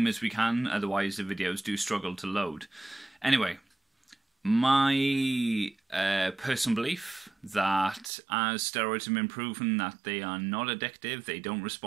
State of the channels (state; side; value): drops out; left; at 8.1 s